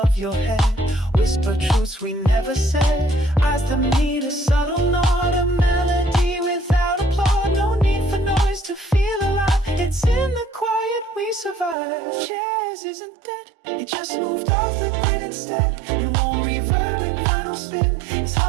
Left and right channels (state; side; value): drops out; left; at 11.8 s